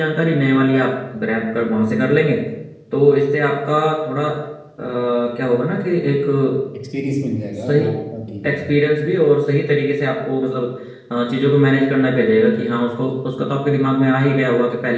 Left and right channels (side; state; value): both; identical; correlation 1.00